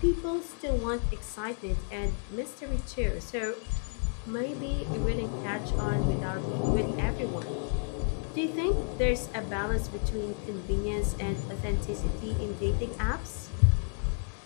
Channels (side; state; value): right; silent; 55 dB below the other